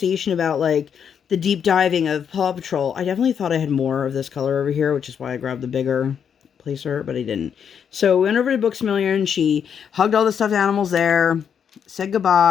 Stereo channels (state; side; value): quieter; right; 7.7 dB